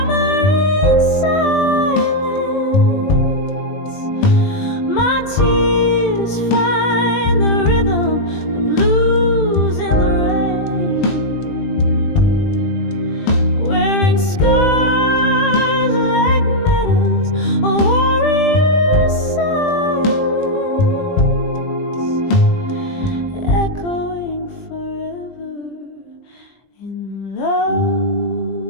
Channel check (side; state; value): right; late; 20 ms